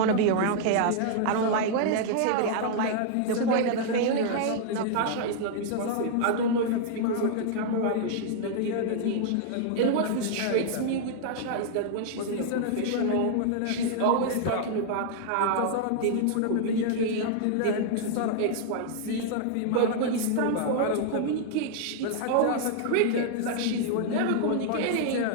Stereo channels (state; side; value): different; both; correlation -0.01